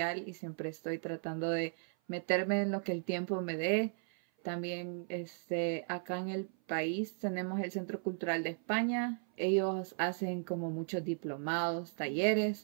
y siempre estoy tratando de meterme en lo que el tiempo me dé. También acá en el país tenemos el Centro Cultural de España. Ellos hacen como muchos diplomados,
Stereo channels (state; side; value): silent; left; 54 dB below the other